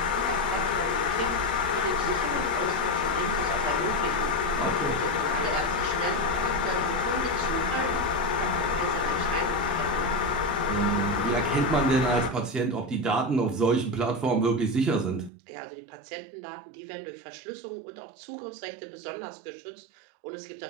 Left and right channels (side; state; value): left; drops out; at 15.3 s